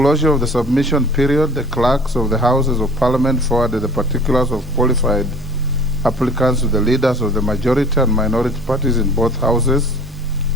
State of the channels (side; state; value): both; normal; correlation 0.47